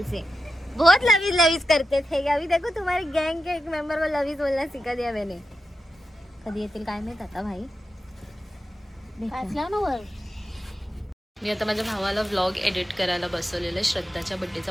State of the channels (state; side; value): normal; both; correlation 0.90